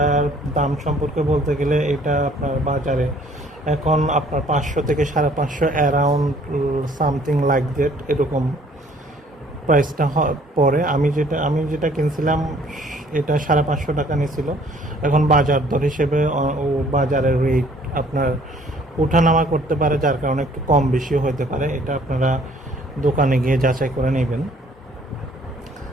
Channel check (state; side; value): normal; both; correlation 0.58